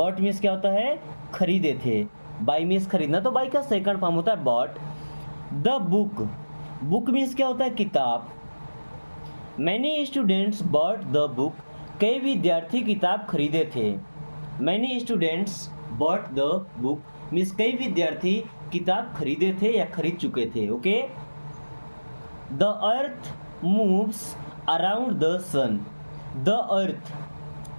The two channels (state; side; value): inverted; both; correlation -1.00